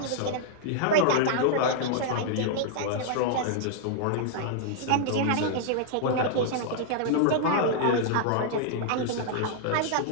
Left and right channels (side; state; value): both; different; correlation -0.01